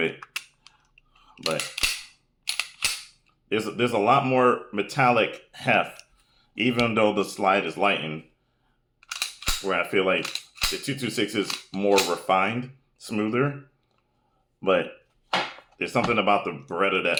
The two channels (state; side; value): identical; both; correlation 1.00